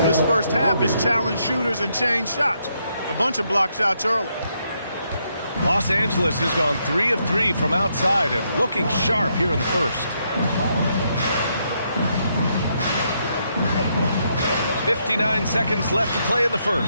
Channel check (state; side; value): inverted; both; correlation -0.77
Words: first half is challenge shooters and change shots. A bunch of block shots early. Los Angeles has gone 3 of 3 from outside and looking sharp here in the first. 59 seconds left to play in the